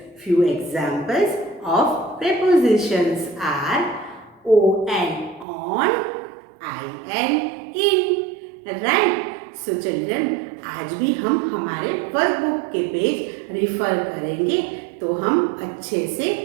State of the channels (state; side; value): drops out; left; at 5.5 s